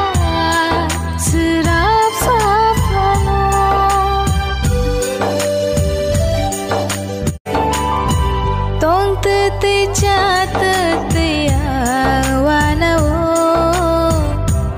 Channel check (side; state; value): both; identical; correlation 1.00